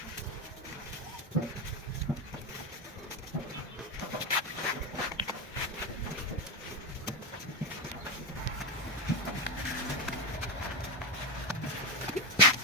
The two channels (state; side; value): normal; both; correlation 0.12